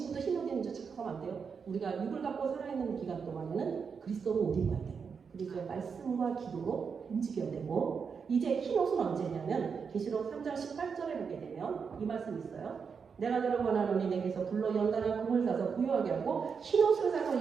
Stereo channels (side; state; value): left; quieter; 6.0 dB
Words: 흰옷 입는 줄 착각하면 안 돼요. 우리가 육을 갖고 살아있는 기간 동안에는 그리스도로 옷 입어야 돼요. 그리고 말씀과 기도로 움직여야 되고, 이제 흰옷은 언제냐면 계시록 3장 18절에 보게 되면 이 말씀이 있어요. 내가 너를 원하노니 내게서 불로 연단한 금을 사서 부유하게 하고 흰옷을